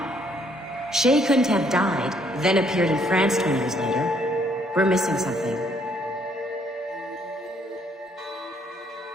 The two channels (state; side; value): normal; both; correlation 0.67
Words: Shay couldn't have died, then appeared in France 20 years later. We're missing something.